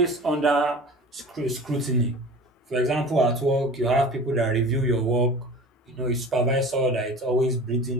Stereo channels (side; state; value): both; normal; correlation 0.39